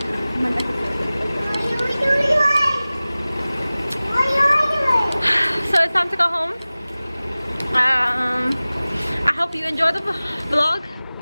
So it's time to go home. I hope you enjoyed the vlog,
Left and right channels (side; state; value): both; inverted; correlation -0.98